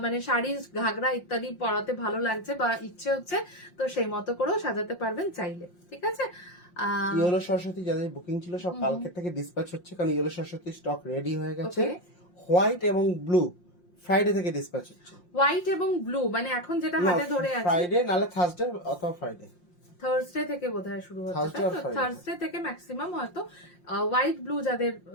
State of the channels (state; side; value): late; right; 5.7 ms